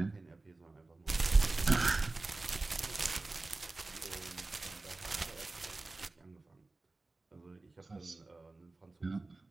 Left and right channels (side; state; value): left; quieter; 3.3 dB